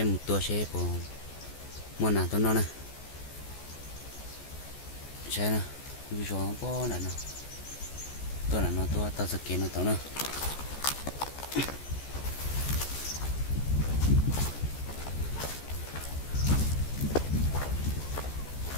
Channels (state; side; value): late; right; 14 ms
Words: một tua xe của mua nào tôi nó nè xe nè bây giờ nó có nè tôi là nó tôi tao sẽ kiến nó tao nè